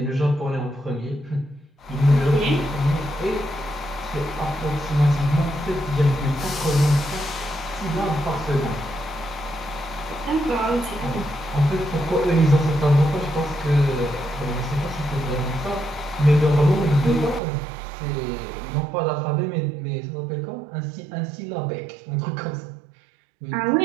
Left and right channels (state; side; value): drops out; left; at 17.4 s